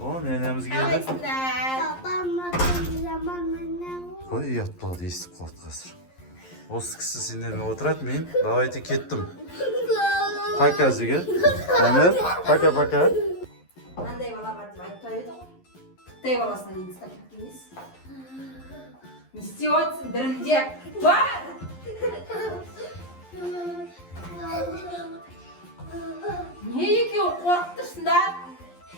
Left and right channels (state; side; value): late; right; 11 ms